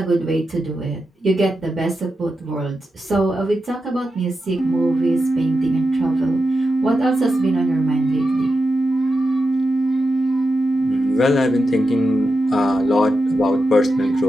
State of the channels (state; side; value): normal; both; correlation 0.89